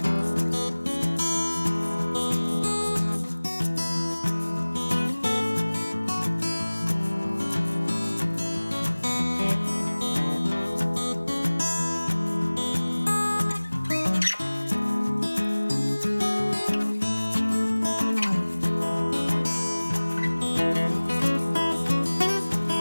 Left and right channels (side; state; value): both; inverted; correlation -1.00